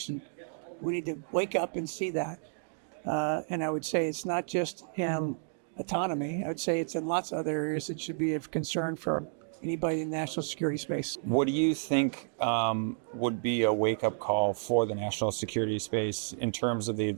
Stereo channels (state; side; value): silent; left; digital silence